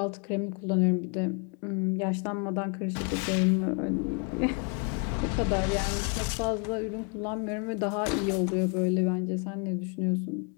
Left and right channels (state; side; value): quieter; right; 36.3 dB